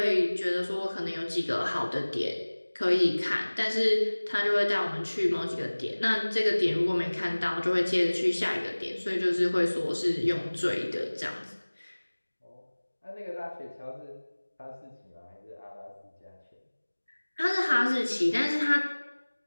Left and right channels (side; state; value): both; inverted; correlation -1.00